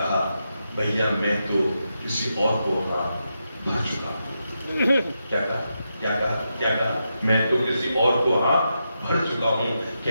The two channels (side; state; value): both; inverted; correlation -0.86